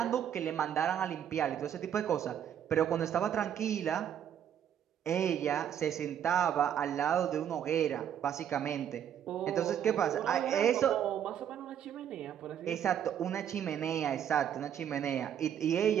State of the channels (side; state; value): left; quieter; 9.4 dB